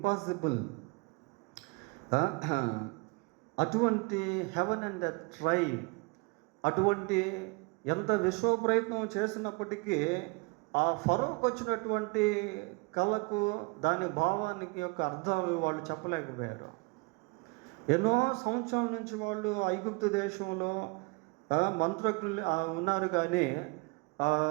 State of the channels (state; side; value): quieter; left; 28.5 dB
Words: అటువంటి హెవెన్ అండ్ ద ట్రై, అటువంటి ఎంత విశ్వ ప్రయత్నం చేసినప్పటికీ ఆ ఫరోకు వచ్చినటువంటి కళకు, దాని భావానికి యొక్క అర్థం వాళ్ళు చెప్పలేకపోయారు. ఎన్నో సంవత్సరాల నుంచి వాళ్ళు ఐగుప్తు దేశంలో మంత్రజ్ఞులు ఉన్నారు, కానీ